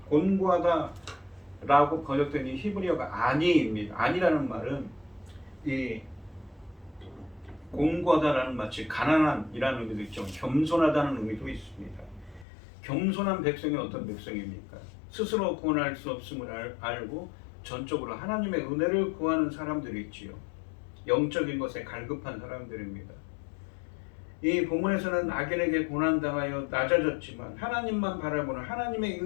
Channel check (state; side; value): drops out; right; at 12.5 s